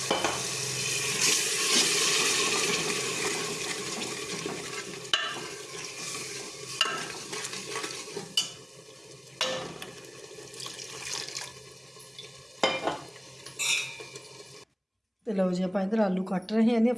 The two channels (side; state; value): both; identical; correlation 1.00